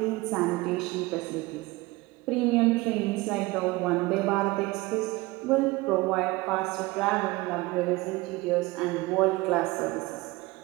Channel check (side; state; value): left; quieter; 21.4 dB